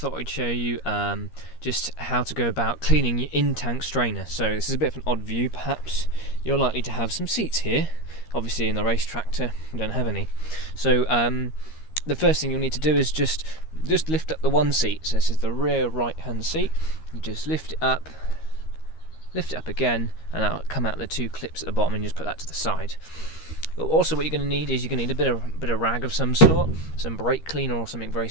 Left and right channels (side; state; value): right; late; 13 ms